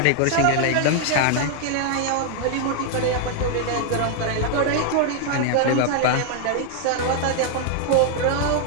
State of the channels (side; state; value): both; different; correlation 0.00